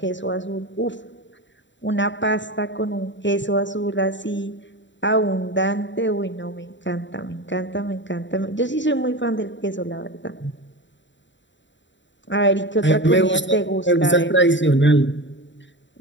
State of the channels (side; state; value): right; late; 0.54 ms